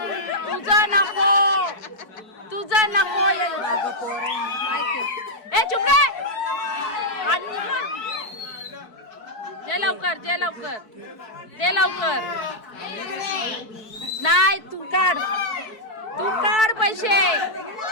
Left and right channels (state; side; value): late; right; 4.6 ms